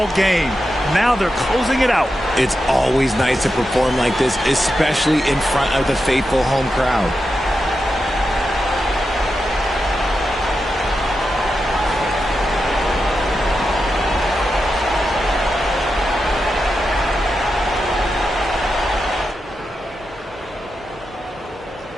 game. Now they're closing it out. It's always nice to perform like this, especially in front of the faithful home crowd.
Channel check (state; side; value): normal; both; correlation 0.88